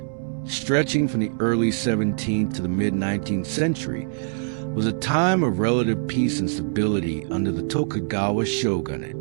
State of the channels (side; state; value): left; silent; digital silence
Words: stretching from the early 17th to the mid-19th century, was a time of relative peace and stability under the Tokugawa shogunate.